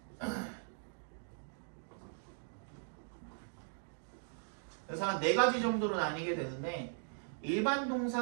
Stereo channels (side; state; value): left; silent; digital silence